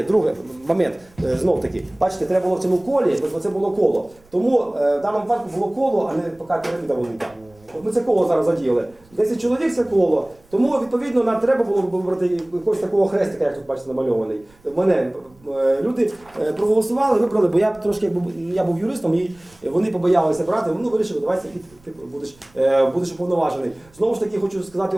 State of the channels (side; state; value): right; noise; rumble, 29 dB below the sound